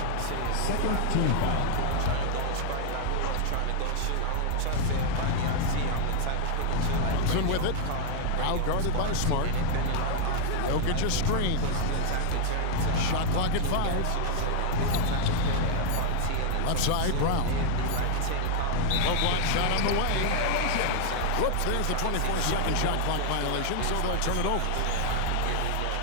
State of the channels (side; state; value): both; different; correlation 0.00